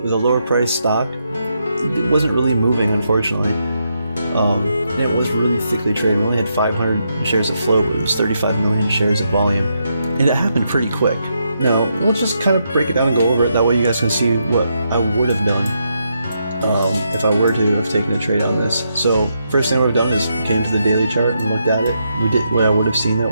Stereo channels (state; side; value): inverted; both; correlation -0.81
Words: with a lower price stock, it wasn't really moving, unfortunately. And it was really thickly traded. We only had 500 shares of float, but it was 35 million shares of volume, and it happened pretty quick. Now, let's just kind of break it down and go over it. That way you guys can see what I would have done if I were to have taken a trade on this. So first thing I would have done is came to the daily chart and looked at it. We did what I would have seen, that